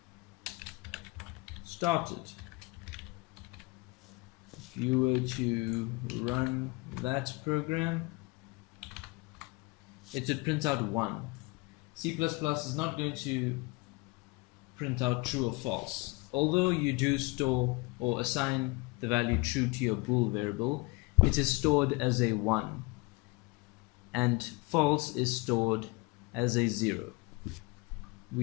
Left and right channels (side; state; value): right; quieter; 25.4 dB